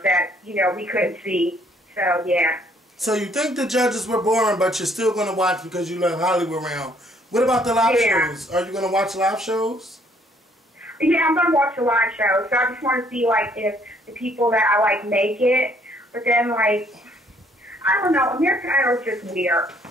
that, we couldn't see. So, yeah. So you think the judges were boring, but you're still going to watch because you love Hollywood Round. What about the live shows? Are you going to watch live shows? Yeah, I'm going to watch the live show. So I just want to see, if the people that I like make it. But then, I don't know. American Idol is just weird.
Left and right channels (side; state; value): both; normal; correlation 0.64